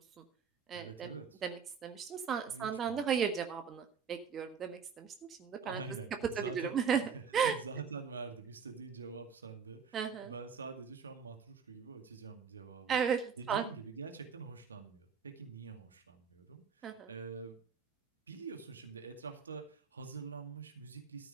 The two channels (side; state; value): left; quieter; 6.5 dB